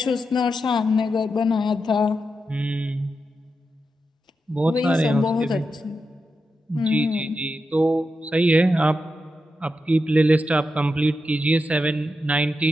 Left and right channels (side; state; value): both; normal; correlation 0.88